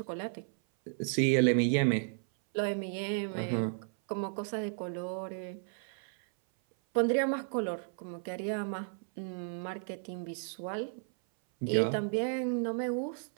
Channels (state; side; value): silent; left; 55 dB below the other